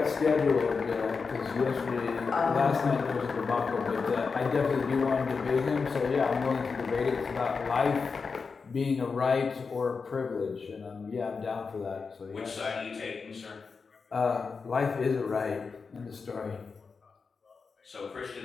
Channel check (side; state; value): right; quieter; 5.0 dB